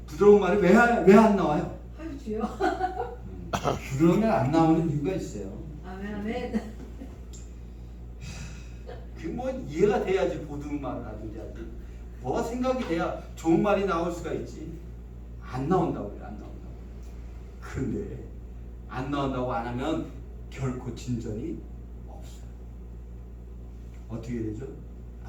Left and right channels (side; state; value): both; identical; correlation 1.00